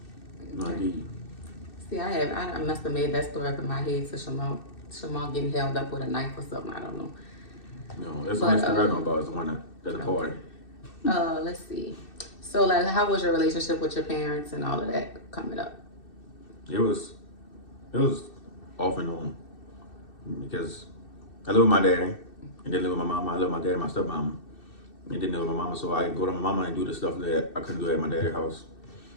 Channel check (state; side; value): late; right; 2.6 ms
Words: no, indeed. See, I must have made that story up in my head to Shamal getting held up with a knife or something. I don't know. No, that's the one I know about. Is the one that's a party. Let's see. So, like, how was your relationship with your parents and all of that coming up? It was off and on, because I live with my daddy, and then live with my mama. I live with my dad and my stepmama, and then live with my mama. So I go to my mama and do the stuff that I couldn't do at my daddy's house.